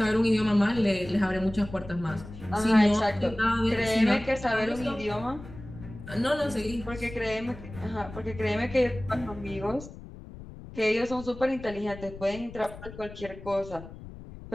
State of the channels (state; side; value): noise; left; rumble, 15 dB below the sound